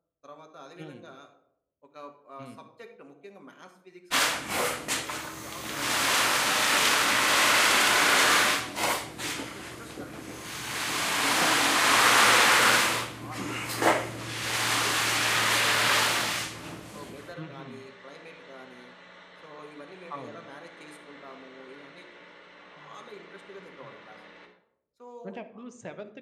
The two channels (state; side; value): identical; both; correlation 1.00